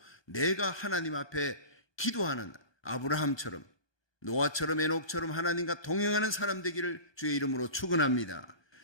내가 하나님 앞에 기도하는 아브라함처럼, 노아처럼, 에녹처럼 하나님과 동행하는 사람 되기를 주의 이름으로 축원합니다.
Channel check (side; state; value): right; late; 1.2 ms